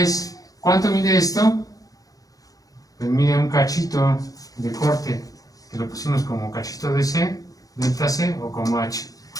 ¿cuánto mide esto? Pues mide un cachito de corte, que lo pusimos como cachito de C, delta C, o como H,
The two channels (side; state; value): right; late; 0.17 ms